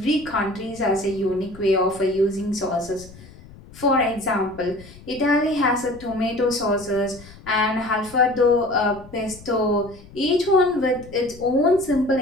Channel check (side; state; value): left; noise; rumble, 20 dB below the sound